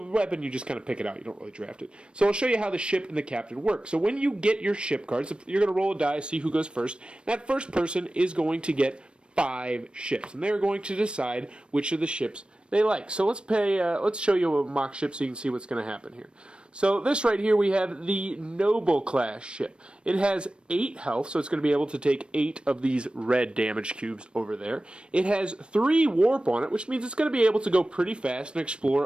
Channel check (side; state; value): left; late; 0.056 ms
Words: you just kind of pick it out. You don't really draft it. So I'll show you how the ship and the captain work. So when you get your ship cards, you're going to roll a die, see who goes first. That first person is going to get 5 ships, and they're going to decide which of the ships they like. So let's show you a mock ship so you can see what's going to happen here. So this right here, we have the Noble class ship. It has 8 health, so it's going to be able to take 8 of these red damage cubes over there. It has 3 warp on it, which means it's going to be able to go pretty fast and